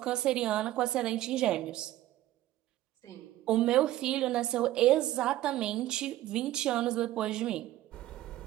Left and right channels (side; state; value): left; quieter; 14.8 dB